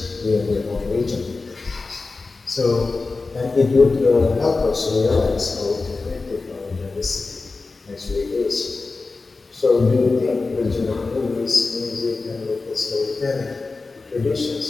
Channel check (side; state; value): right; quieter; 3.8 dB